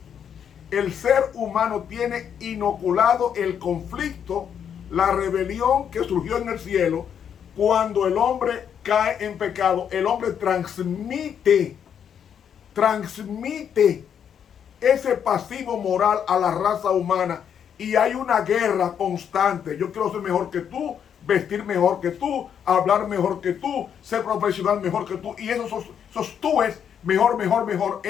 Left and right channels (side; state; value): right; quieter; 8.3 dB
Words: El ser humano tiene inoculado el conflicto, la rebelión que surgió en el cielo. Cuando el hombre cae en pecado, el hombre transmite ese pasivo moral a la raza humana, y hay una guerra constante. Yo quiero ser mejor que tú, vestir mejor que tú, hablar mejor que tú, ser profesional mejor que tú, y esos tú es mejor.